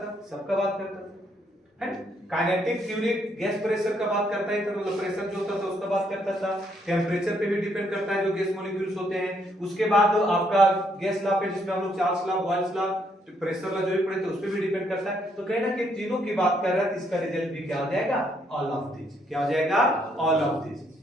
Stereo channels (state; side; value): normal; both; correlation 0.72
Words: सबका बात करता था, है। काइनेटिक थ्योरी गैस प्रेशर का बात करता है, तो मतलब प्रेशर जो होता था उसका बात करता था, टेम्परेचर पे भी डिपेंड करता है जो गैस मॉलिक्यूल्स होते हैं। उसके बाद आपका गैस लॉ पे जिसमें हम लोग Charles law, Boyle's law, pressure law जो भी पढ़े थे उस पे भी डिपेंड करता है। तो कहीं ना कहीं तीनों की बात कर रहा है, तो इसका रिजल्ट भी क्या हो जाएगा, ऑल ऑफ दीज। क्या हो जाएगा, ऑल ऑफ दीज।